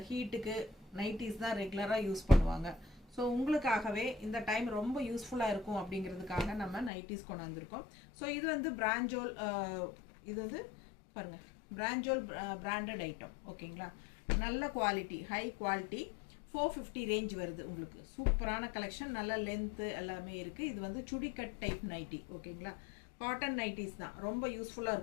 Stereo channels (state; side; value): drops out; right; at 6.9 s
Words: ஹீட்டுக்கு நைட்டிஸ் தான் ரெகுலராக யூஸ் பண்ணுவாங்க. ஸோ உங்களுக்காகவே இந்த டைம் ரொம்ப யூஸ்ஃபுல்லாக இருக்கும் அப்படிங்கிறதுக்காக நம்ம நைட்டிஸ் கொண்டு வந்திருக்கோம். ஸோ இது வந்து பிராஞ்சோல், இது வந்து பாருங்கள், பிராஞ்சோல் பிராண்டட் ஐட்டம். ஓகேங்களா? நல்ல குவாலிட்டி, ஹை குவாலிட்டி, 450 ரேஞ்ச் வருது. உங்களுக்கு சூப்பரான கலெக்ஷன், நல்ல லென்த்து எல்லாமே இருக்குது. இது வந்து சுடி கட் டைப் நைட்டி. ஓகேங்களா? காட்டன் நைட்டிஸ் தான், ரொம்ப யூஸ்ஃபுல்லாக